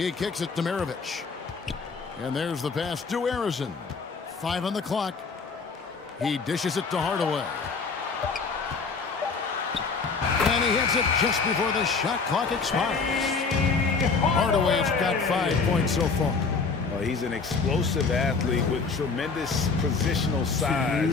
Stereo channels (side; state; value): right; quieter; 4.8 dB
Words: kicks it to Maravich. And there's the pass to Harrison. 5 on the clock. He dishes it to Hardaway. And he hits it just before the shot clock expires. Hardaway's got 5 points so far. Well, he's an explosive athlete with tremendous positional